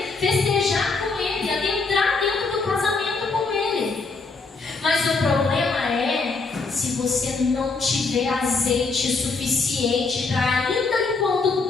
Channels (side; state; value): right; quieter; 4.1 dB